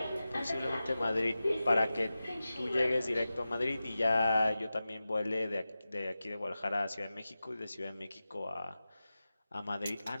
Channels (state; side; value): inverted; both; correlation -0.94